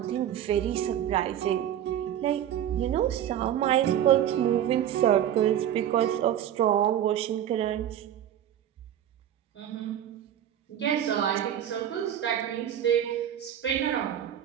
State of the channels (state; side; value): quieter; left; 10.7 dB